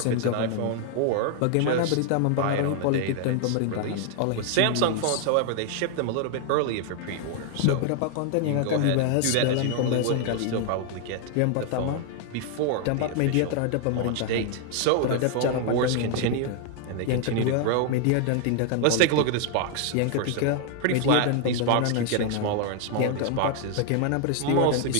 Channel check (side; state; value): both; different; correlation 0.00